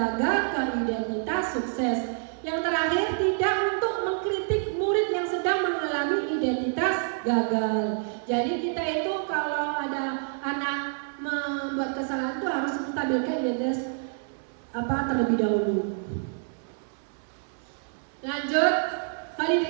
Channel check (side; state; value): left; silent; digital silence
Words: ke identitas sukses. Yang terakhir, tidak untuk mengkritik murid yang sedang mengalami identitas gagal. Jadi kita itu kalau ada anak membuat kesalahan itu harus menstabilkan identitas terlebih dahulu. Lanjut,